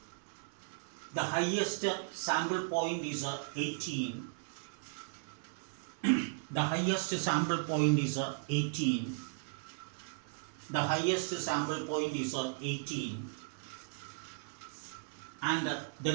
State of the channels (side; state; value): left; silent; 54 dB below the other